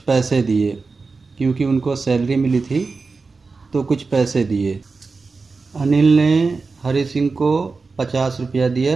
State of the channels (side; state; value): left; quieter; 4.2 dB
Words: दिए, क्योंकि उनको सैलरी मिली थी तो कुछ पैसे दिए। अनिल ने हरि सिंह को 50 रुपया